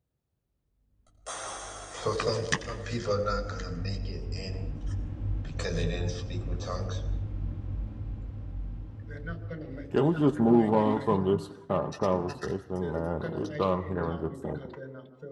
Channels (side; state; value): both; identical; correlation 1.00